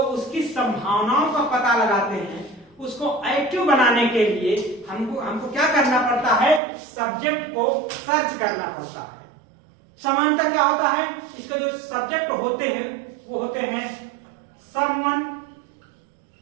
संभावनाओं का पता लगाते हैं। उसको एक्टिव बनाने के लिए हमको क्या करना पड़ता है, सब्जेक्ट को सर्च करना पड़ता है। समानता क्या होता है, इसके जो सब्जेक्ट होते हैं वो होते हैं समवन,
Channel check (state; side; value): drops out; left; at 6.6 s